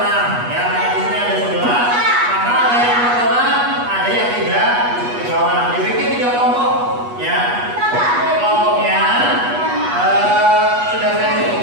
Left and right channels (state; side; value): late; left; 8.3 ms